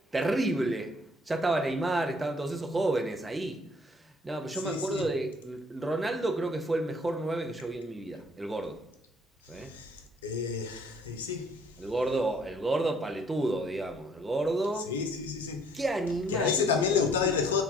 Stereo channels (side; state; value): both; normal; correlation 0.61